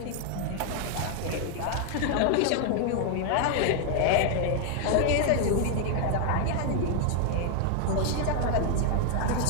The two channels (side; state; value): both; different; correlation 0.00